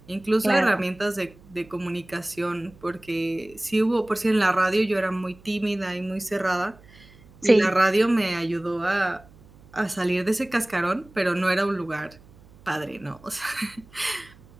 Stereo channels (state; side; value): noise; right; hum, 25 dB below the sound